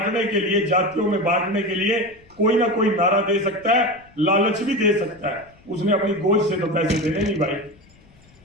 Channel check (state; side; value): noise; left; rumble, 28 dB below the sound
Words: के लिए, जातियों में बांटने के लिए कोई ना कोई नारा दे सकता है, लालच भी दे सकता है। उसने अपनी गोद से तो पैसे देने नहीं भाई।